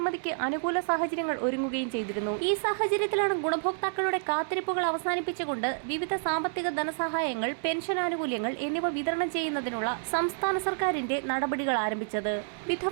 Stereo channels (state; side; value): silent; left; digital silence